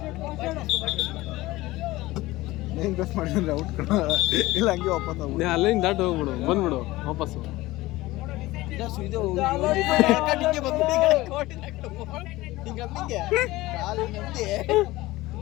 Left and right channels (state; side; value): quieter; right; 18.7 dB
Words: ಇಲ್ಲ ಹಂಗೆ ವಾಪಸ್ ಅಲ್ಲಿಂದ ದಾಟ್ ಹೋಗ್ಬಿಡು, ಬಂದ್ಬಿಡು ವಾಪಸ್ಸು.